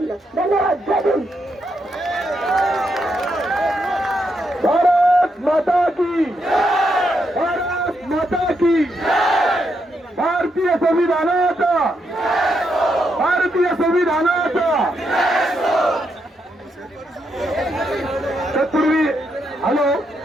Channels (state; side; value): normal; both; correlation 0.80